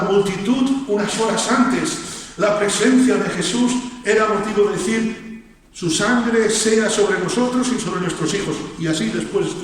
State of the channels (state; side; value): identical; both; correlation 1.00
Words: multitud, unas horas antes, la presencia de Jesús era motivo de decir: su sangre sea sobre nosotros y sobre nuestros hijos. Y así después